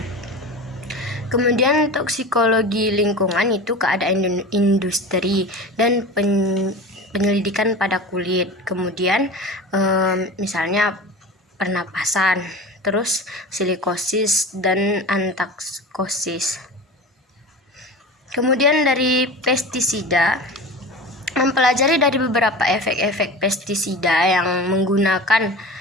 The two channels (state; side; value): normal; both; correlation 0.32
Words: Kemudian toksikologi lingkungan itu keadaan industri dan penyelidikan pada kulit. Kemudian misalnya pernapasan, terus silikosis dan antaksosis. Kemudian dari pestisida, mempelajari dari beberapa efek-efek pestisida yang menggunakan